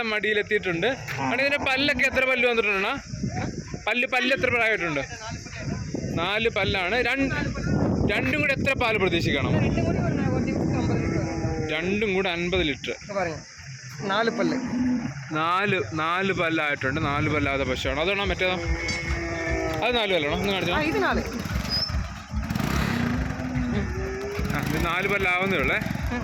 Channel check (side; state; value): both; identical; correlation 1.00